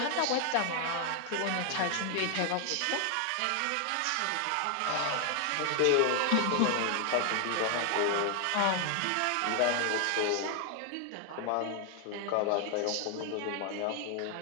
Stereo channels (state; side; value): different; both; correlation 0.00